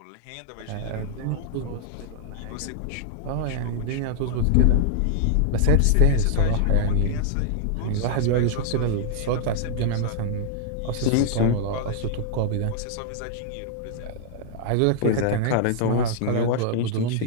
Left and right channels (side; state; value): both; different; correlation -0.01